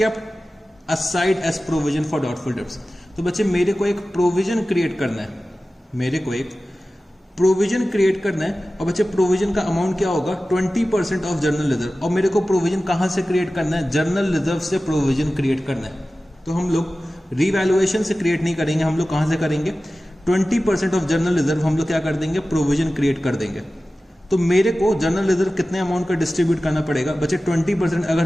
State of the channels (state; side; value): normal; both; correlation 0.96